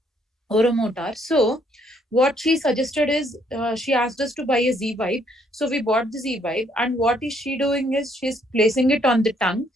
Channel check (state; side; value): normal; both; correlation 0.68